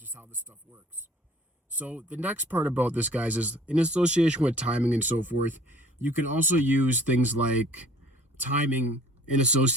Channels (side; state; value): both; normal; correlation 0.52